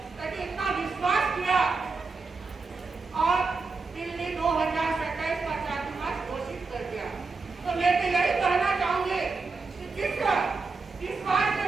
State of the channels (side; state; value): left; quieter; 4.2 dB